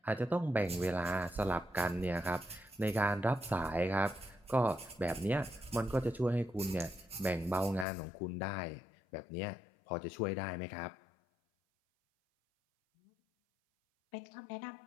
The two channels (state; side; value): drops out; right; at 7.9 s